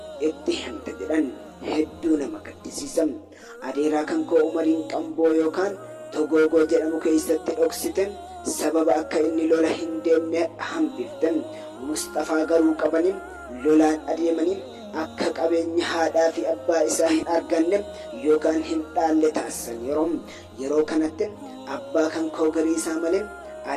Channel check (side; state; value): both; identical; correlation 1.00